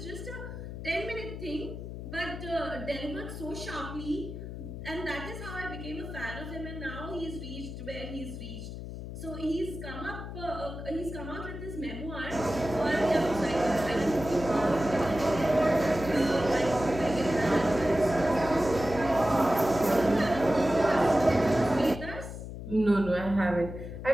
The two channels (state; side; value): noise; left; hum, 9 dB below the sound